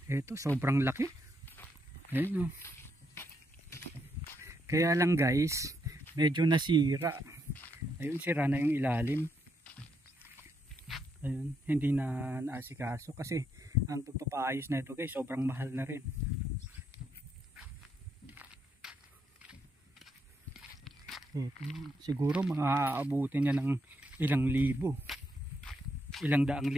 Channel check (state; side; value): normal; both; correlation 0.77